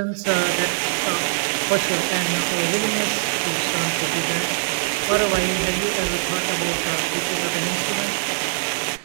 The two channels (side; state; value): left; silent; 64 dB below the other